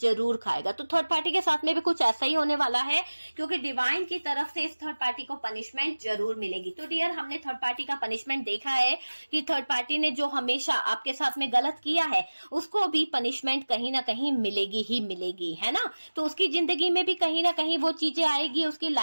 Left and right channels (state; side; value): inverted; both; correlation -1.00